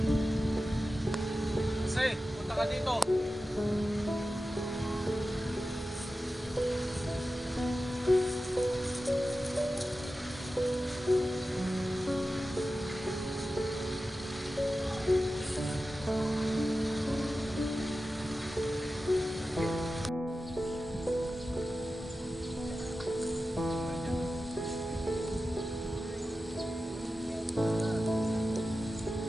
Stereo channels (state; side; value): normal; both; correlation 0.93